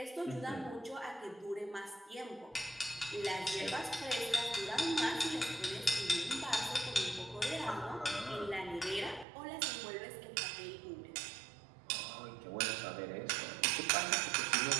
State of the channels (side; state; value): left; drops out; at 9.2 s